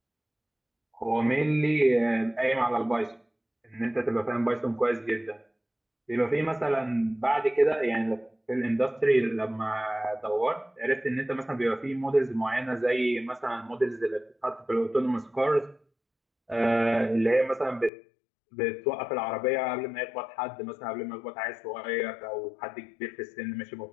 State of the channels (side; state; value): right; drops out; at 17.9 s